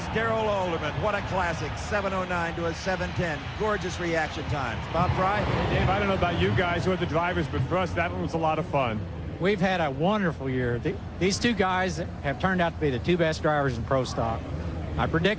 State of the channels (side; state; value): both; identical; correlation 1.00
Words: Darrell Alderman. What a classic, 7:09 to a 7:10. Gorgeous reaction times. Bob Fry? Hey, Dave, I don't know about you guys who are the drivers, but for us, that one was a lot of fun. We've had a wonderful year. These two guys have turned out to be the two best drivers in Pro Stock. I